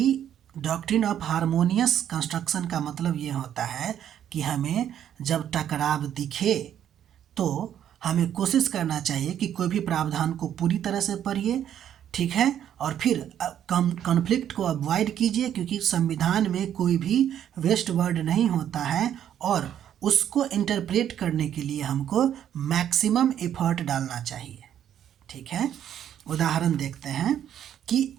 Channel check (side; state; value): left; quieter; 10.1 dB